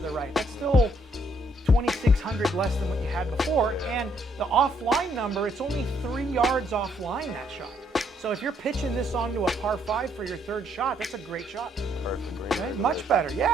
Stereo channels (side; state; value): both; normal; correlation 0.70